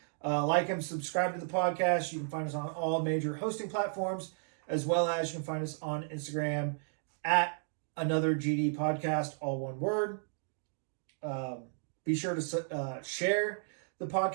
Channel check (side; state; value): left; silent; digital silence